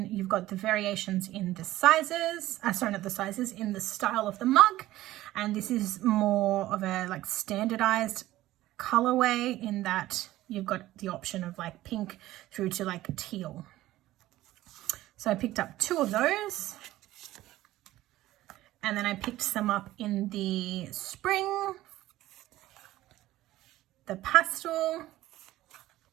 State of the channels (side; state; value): left; quieter; 15.7 dB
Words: you've got the variations in the sizes, not the sizes, in the style of the mug. And this is more of a like standardized colorway in that you've got the option of like pink through to like teal. So I picked up 2 of those. And then I picked some up in the spring, the pastel.